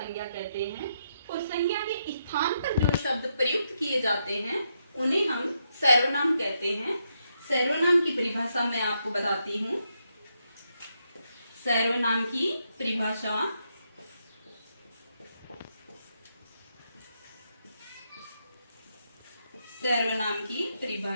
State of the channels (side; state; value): both; inverted; correlation -0.80